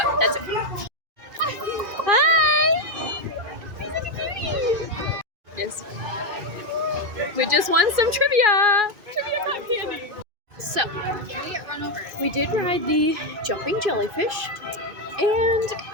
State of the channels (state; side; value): late; left; 2.4 ms